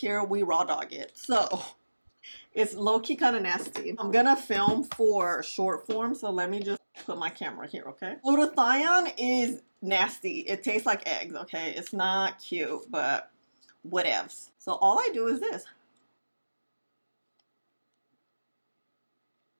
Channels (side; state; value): both; inverted; correlation -1.00